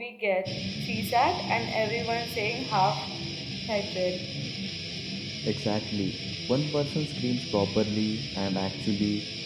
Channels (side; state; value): both; identical; correlation 1.00